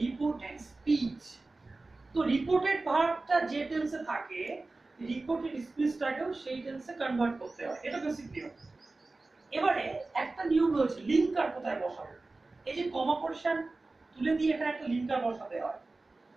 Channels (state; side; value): quieter; left; 3.3 dB